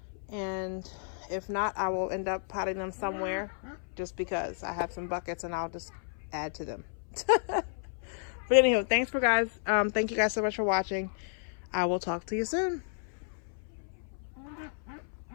And if not, I will end up potting them somewhere just because I have some buckets and I'll just add to them. But anyhow, thank you guys so much for watching. I will talk to you soon.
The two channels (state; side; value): silent; right; 56 dB below the other